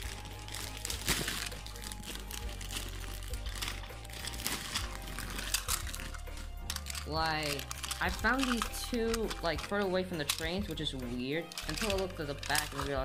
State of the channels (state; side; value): identical; both; correlation 1.00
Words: Like, I found these two, like, further away from the trains, which is weird, until I looked at the back and